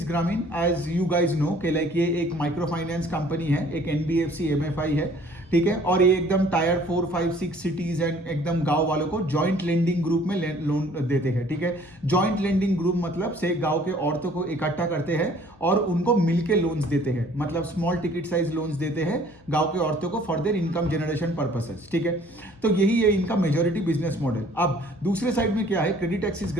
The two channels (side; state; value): left; noise; hum, 27 dB below the sound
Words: ग्रामीण। एज यू गाइज नो कि लाइक ये एक माइक्रो फाइनेंस कंपनी है, एक एनबीएफसी एमएफआई है, ठीक है। और ये एकदम टायर 4, 5, 6 सिटीज एंड एकदम गांव वालों को जॉइंट लेंडिंग ग्रुप में लोन देते हैं, ठीक है। जॉइंट लेंडिंग ग्रुप मतलब से गांव के औरतों को इकट्ठा करते हैं और उनको मिलके लोन्स देते हैं, मतलब स्मॉल टिकट साइज लोन्स देते हैं गांव के औरतों को for their income generation purposes, ठीक है। तो यही है इनका मेजोरिटी बिजनेस मॉडल। अब दूसरे साइड में क्या है, क्रेडिट एक्सिस